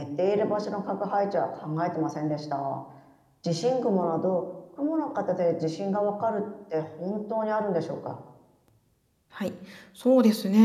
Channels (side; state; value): both; identical; correlation 1.00